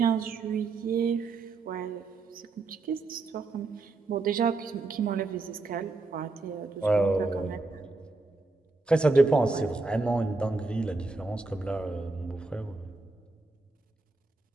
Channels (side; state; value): left; quieter; 3.6 dB